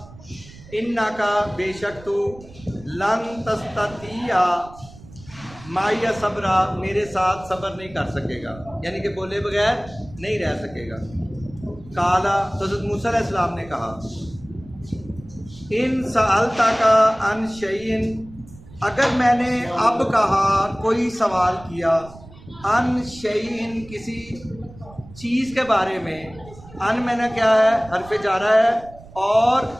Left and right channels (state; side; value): noise; right; rumble, 20 dB below the sound